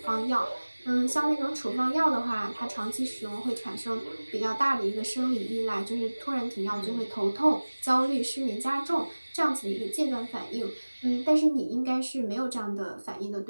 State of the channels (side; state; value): both; inverted; correlation -1.00